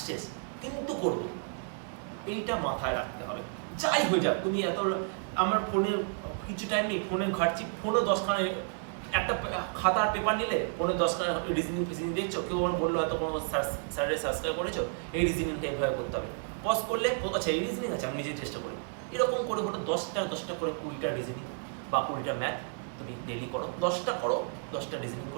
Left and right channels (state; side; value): silent; left; 57 dB below the other